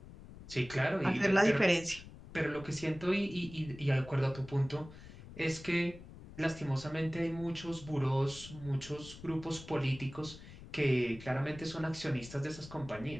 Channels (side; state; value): left; noise; rumble, 16 dB below the sound